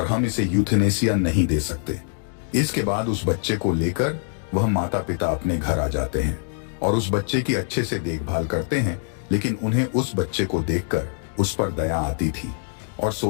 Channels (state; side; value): silent; right; 61 dB below the other